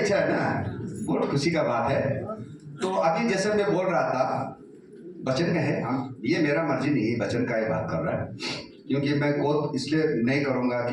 है ना, बहुत खुशी का बात है। तो अभी जैसे मैं बोल रहा था वचन का है, हम ये मेरा मर्जी नहीं है, वचन का ही बात कर रहा है, क्योंकि मैं कोट इसलिए नहीं करूँगा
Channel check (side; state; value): both; identical; correlation 1.00